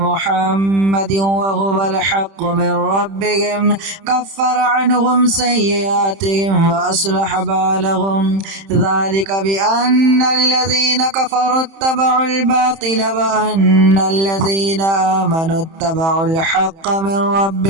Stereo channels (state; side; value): late; left; 31 ms